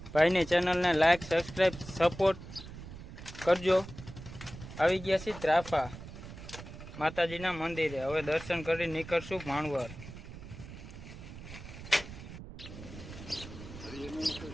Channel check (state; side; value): noise; right; rumble, 13 dB below the sound